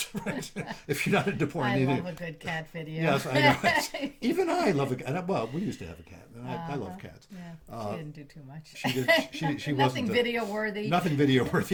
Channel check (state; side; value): identical; both; correlation 1.00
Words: Right? If you're not into porn, I love a good cat video. Yes, I know. Even I love a cat. Well, we used to have a cat, and I love cats. Yeah, she didn't do too much. She did. She Nothing wasn't video worthy. Nothing video